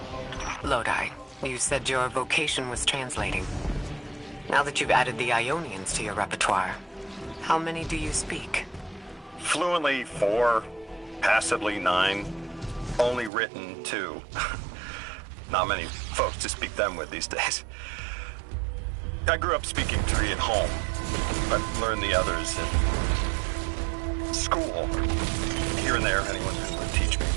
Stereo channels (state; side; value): drops out; left; at 13.3 s